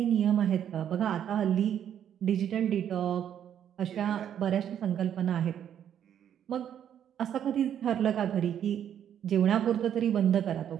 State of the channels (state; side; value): quieter; left; 9.6 dB